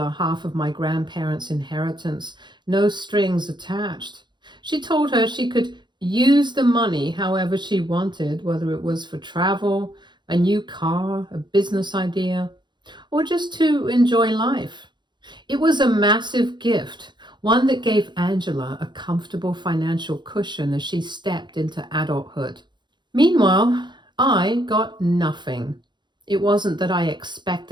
half of my grandparents' inheritance, no strings attached. She told her she could use the money however she wanted, whether it was for travel, a new car, a business idea, or just to enjoy life. It was a massive gift, one that gave Angela a comfortable financial cushion as she stepped into adulthood. Meanwhile, I got nothing. It wasn't that I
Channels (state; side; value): late; left; 0.22 ms